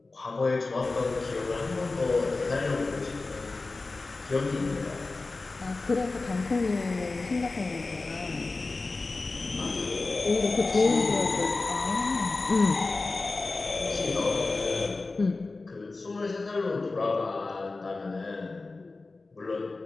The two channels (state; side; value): quieter; right; 3.5 dB